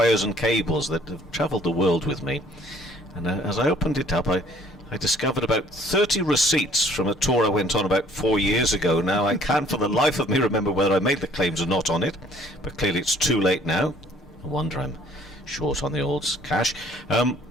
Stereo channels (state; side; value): normal; both; correlation 0.58